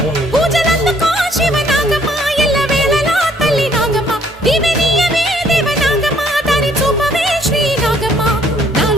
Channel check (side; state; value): both; normal; correlation 0.63